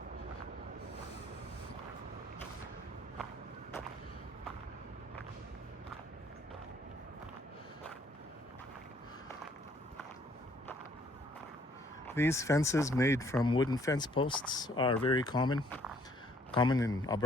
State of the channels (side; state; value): both; normal; correlation 0.63